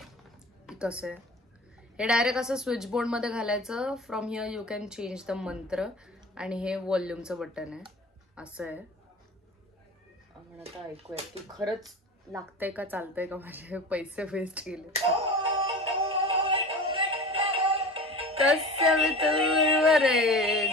कसं आहे. हे डायरेक्ट असं स्विच बोर्ड मध्ये घालायचं. From here you can change the मंत्र. आणि हे व्हॉल्यूमचं बटन आहे, असं आहे. आपण आता ऐकूया की खरंच लागतंय का, चालतंय का, माझे पैसे वेस्ट गेले. तस्य वितुर्वरेण्यं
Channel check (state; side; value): normal; both; correlation 0.36